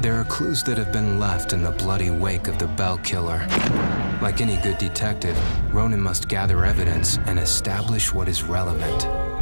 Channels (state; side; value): inverted; both; correlation -1.00